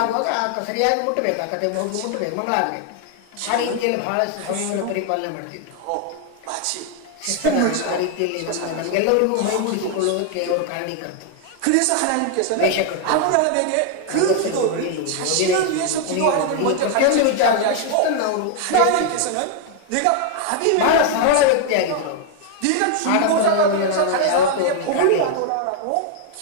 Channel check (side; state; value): both; different; correlation 0.00